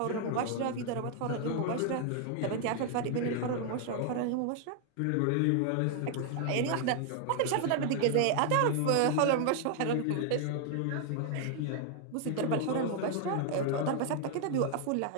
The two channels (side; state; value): both; different; correlation 0.00